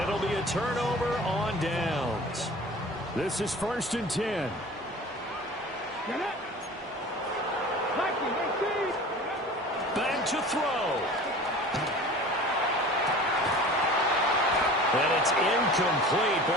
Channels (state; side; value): normal; both; correlation 0.40